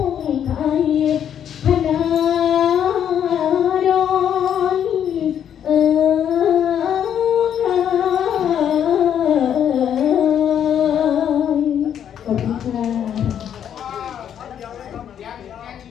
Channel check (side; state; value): right; quieter; 9.2 dB